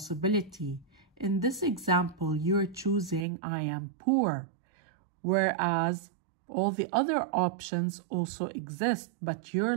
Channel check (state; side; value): drops out; left; at 3.2 s